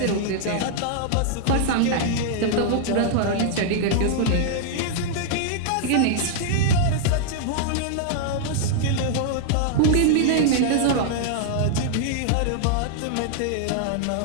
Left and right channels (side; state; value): both; different; correlation -0.01